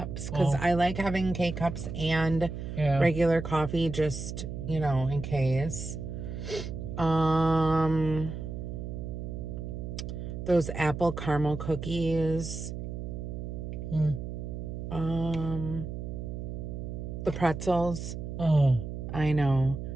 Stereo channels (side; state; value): right; noise; hum, 6 dB below the sound